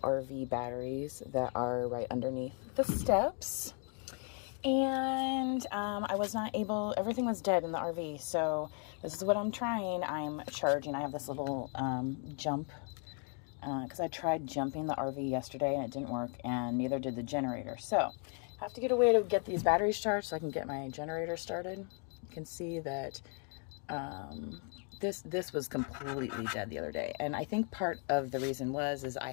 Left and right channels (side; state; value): right; quieter; 39.0 dB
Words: RV batteries that are right underneath the steps. And I was not able, everything was dead in the RV. So this is what I'm trying. I'm charging. I have this little jump, because I tried jumping the RV yesterday and it didn't work, and neither did the generator. So I have to get a way to get these batteries charged so I can get my generator started. You can see that this was completely dead the other day, and I think part of the reason is I